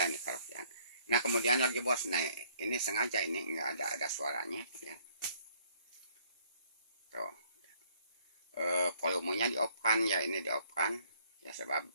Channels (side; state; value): both; inverted; correlation -0.64